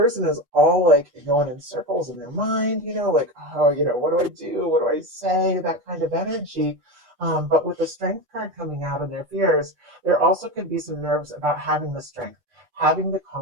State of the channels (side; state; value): left; late; 8.2 ms